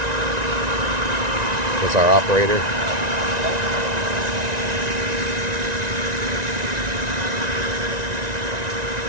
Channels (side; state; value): left; late; 1.9 ms